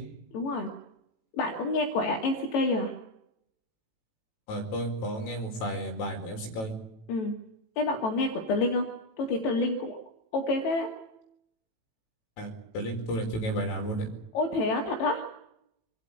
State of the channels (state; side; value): late; right; 18 ms